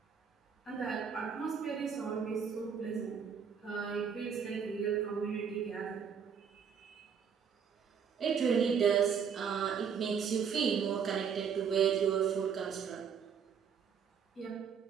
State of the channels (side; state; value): left; quieter; 6.9 dB